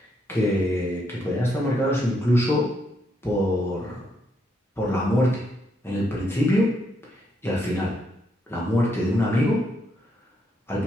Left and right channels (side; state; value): both; normal; correlation 0.76